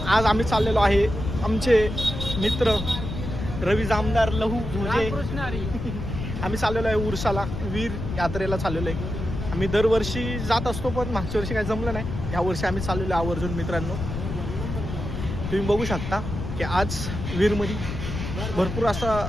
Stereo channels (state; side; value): noise; left; rumble, 6 dB below the sound